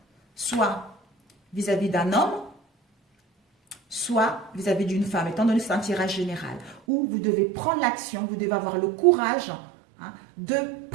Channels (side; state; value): left; drops out; at 6.8 s